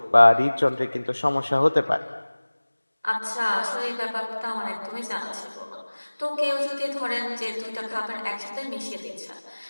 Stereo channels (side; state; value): both; inverted; correlation -1.00